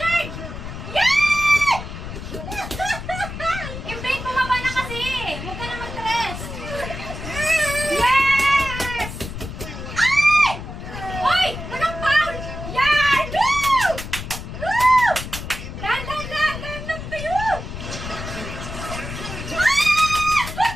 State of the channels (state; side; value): noise; left; rumble, 9 dB below the sound